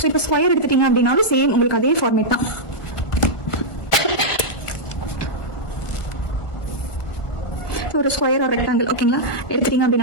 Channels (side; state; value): right; late; 1.4 ms